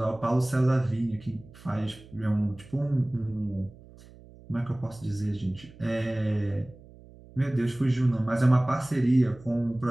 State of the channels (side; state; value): right; noise; hum, 22 dB below the sound